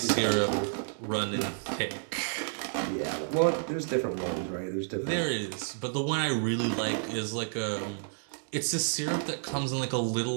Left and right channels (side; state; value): left; silent; digital silence